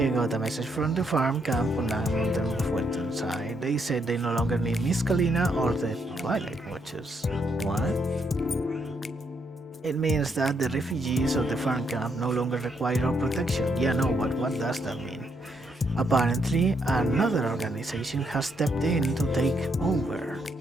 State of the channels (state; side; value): normal; both; correlation 0.76